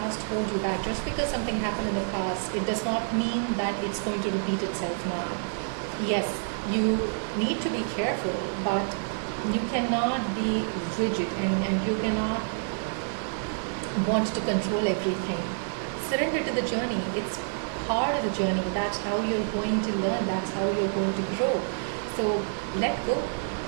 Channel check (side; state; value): left; silent; digital silence